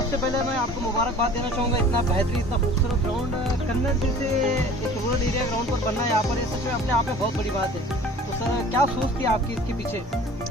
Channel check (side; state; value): both; normal; correlation 0.45